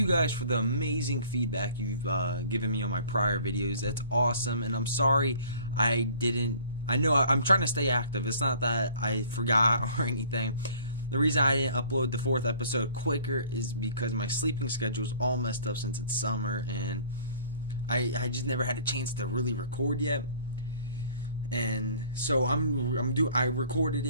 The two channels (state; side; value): inverted; both; correlation -0.52